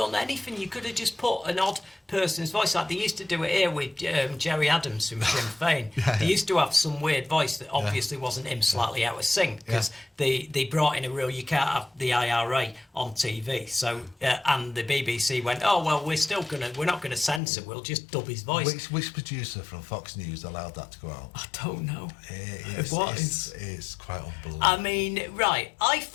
anything. You could have just put an odd person's voice. Like they used to do it here with Jerry Adams from Sinn Féin. They used to have some weird voice that obviously wasn't him, slightly out of sync, because they brought in a rule, you can't have the IRA on TV. So and the BBC went, oh well, we're not gonna censor. We'll just dub his voice. Which producer from Fox News allowed that to go out? I don't know. It's quite unbelievable. I mean, right, I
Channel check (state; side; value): drops out; right; at 17.4 s